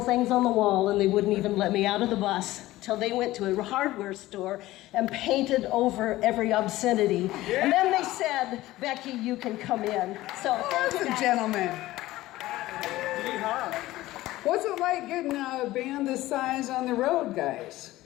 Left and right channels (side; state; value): right; quieter; 16.8 dB